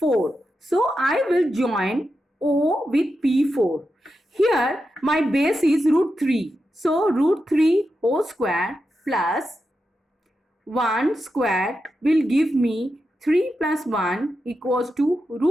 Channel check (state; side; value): normal; both; correlation 0.88